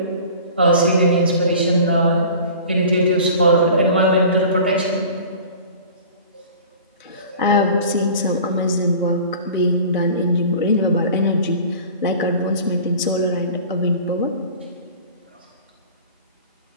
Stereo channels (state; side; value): inverted; both; correlation -0.42